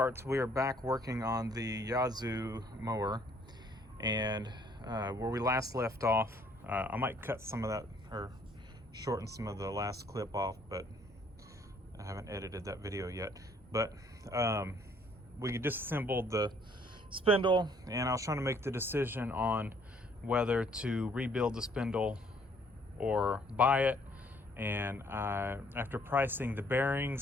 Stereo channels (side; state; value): both; normal; correlation 0.63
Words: We are back working on the Yazoo mower, and where we last left off, I might cut some of that or shorten some of the last clip off, but I haven't edited that video yet. But we disassembled the spindle, and I was trying to make the decision on whether to rebuild the spindle or buy it. And after pricing the